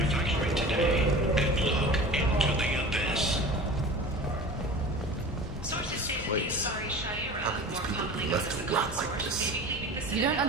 today and look into the abyss. Sources say that the Asari Shaira How can these people be left to rot like this? You don't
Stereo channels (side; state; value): both; normal; correlation 0.37